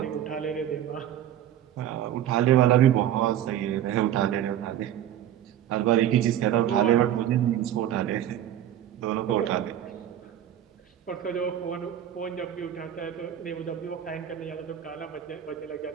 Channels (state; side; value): quieter; left; 11.1 dB